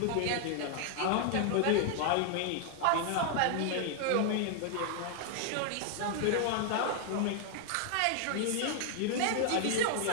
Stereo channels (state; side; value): different; both; correlation 0.00